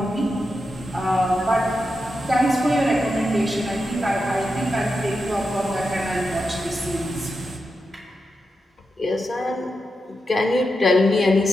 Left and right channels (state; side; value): normal; both; correlation 0.88